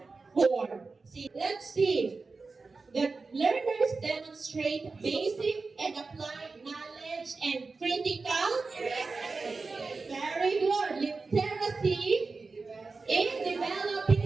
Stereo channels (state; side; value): quieter; left; 4.1 dB